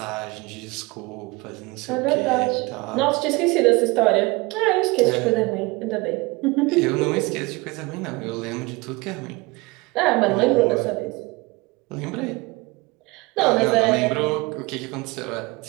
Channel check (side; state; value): left; quieter; 24.5 dB